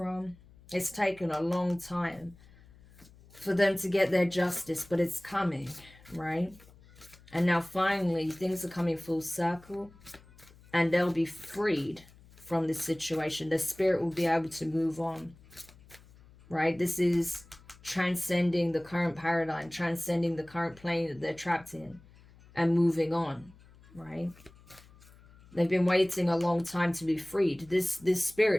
It's taken a long time for them to get their justice, but it's coming, right? And now finally things are coming full circle and they'll be freed from this situation. The spirit will be able to move on, right? This is transcending the current paradigm, transcending the current plane that they're trapped in and moving on, right? They've been waiting a long time to be freed. This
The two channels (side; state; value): left; noise; hum, 24 dB below the sound